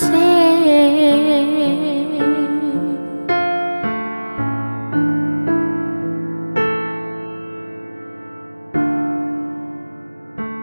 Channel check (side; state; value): both; inverted; correlation -1.00